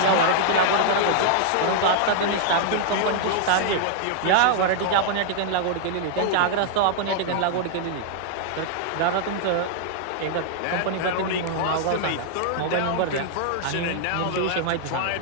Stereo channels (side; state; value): both; different; correlation -0.01